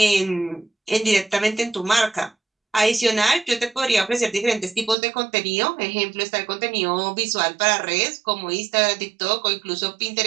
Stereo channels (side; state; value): left; drops out; at 5.0 s